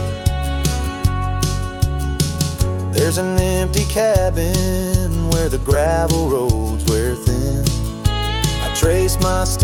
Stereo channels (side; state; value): both; identical; correlation 1.00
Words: There's an empty cabin where the gravel roads wear thin. I trace my